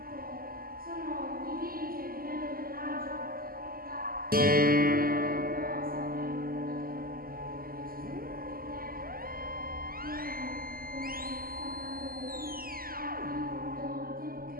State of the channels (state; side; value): late; left; 0.42 ms